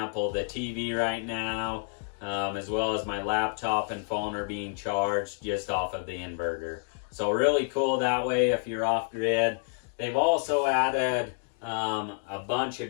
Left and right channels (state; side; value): silent; right; 59 dB below the other